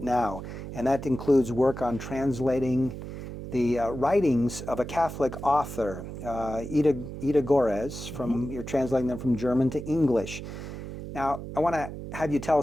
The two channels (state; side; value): noise; right; hum, 9 dB below the sound